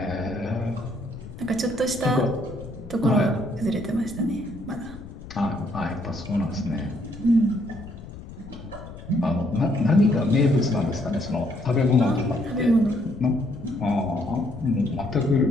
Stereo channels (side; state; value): left; noise; rumble, 14 dB below the sound